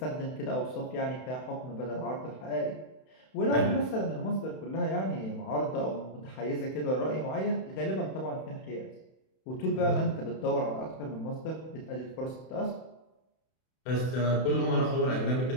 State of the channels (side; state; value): right; late; 31 ms